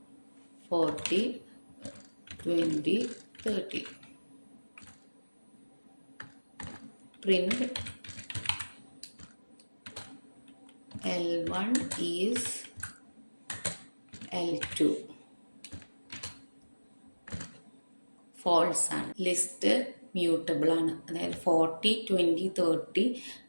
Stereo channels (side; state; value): both; inverted; correlation -1.00